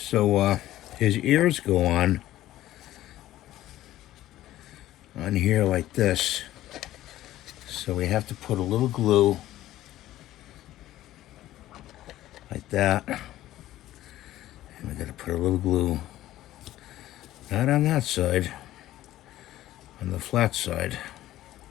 his ears go on here like this. So we have to put a little glue like that. And we gotta put a little glue, not on that side, on the flat side.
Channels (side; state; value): right; quieter; 14.4 dB